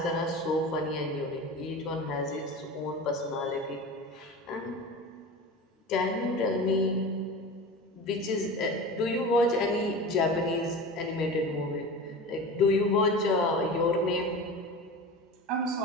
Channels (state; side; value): normal; both; correlation 0.32